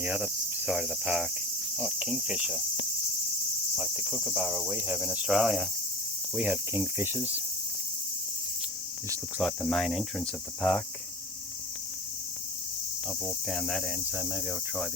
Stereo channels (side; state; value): both; normal; correlation 0.33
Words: other side of the park. Oh, kingfisher. Like the kookaburra we have in Australia. We have kingfishers. This looks like the main entrance of the park. I've walked down that end, so maybe I'll try